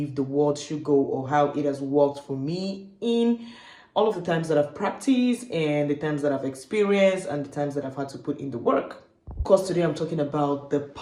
the world should go, or how it has worked for me in all of the times that I've practiced and the times that I've experienced and the times that I've had to put in the work. Of course, today I'm talking about the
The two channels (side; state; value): both; identical; correlation 1.00